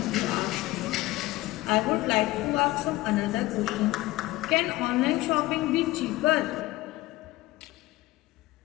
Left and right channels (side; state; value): right; quieter; 18.5 dB